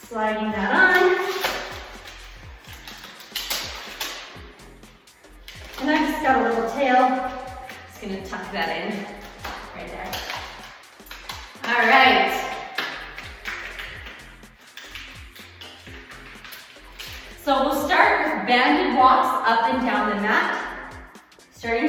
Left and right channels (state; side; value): identical; both; correlation 1.00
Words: Sliding that on. And I just got a little tail. Just gonna tuck that in right there. All right. So we'll start with banded walks up and down the mat. Starting